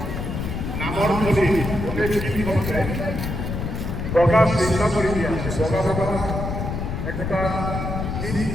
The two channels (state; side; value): noise; left; rumble, 4 dB below the sound